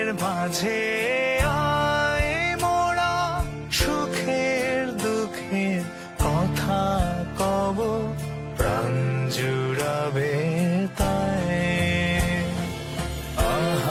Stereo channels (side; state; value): both; identical; correlation 1.00